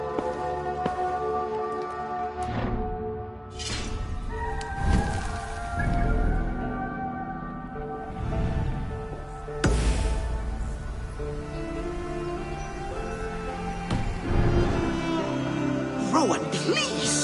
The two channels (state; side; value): identical; both; correlation 1.00